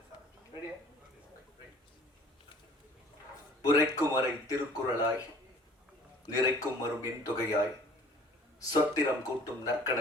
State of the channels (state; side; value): normal; both; correlation 0.51